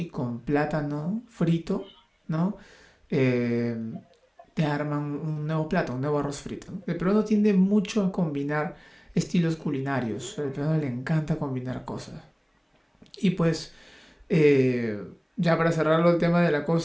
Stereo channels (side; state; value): both; identical; correlation 1.00